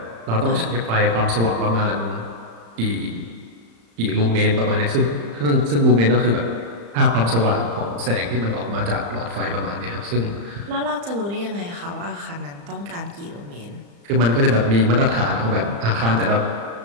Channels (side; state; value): left; late; 35 ms